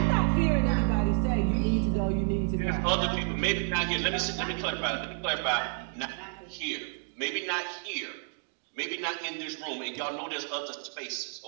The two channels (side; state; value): left; silent; digital silence